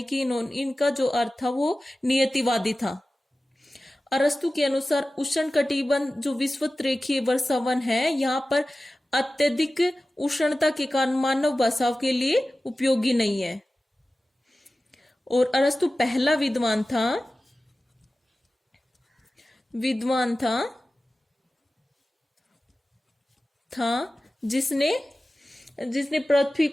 कि इनका जो अर्थ था वो नियतिवादी था। अरस्तु के अनुसार उष्णकटिबंध जो विषुवत रेखीय वर्षावन है यहाँ पर अत्यधिक उष्णता के कारण मानव बसाव के लिए उपयोगी नहीं है। और अरस्तु पहला विद्वान था जिसने पृथ्वी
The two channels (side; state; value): both; normal; correlation 0.96